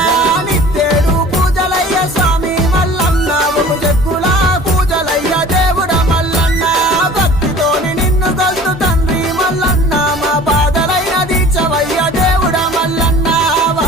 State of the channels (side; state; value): both; normal; correlation 0.45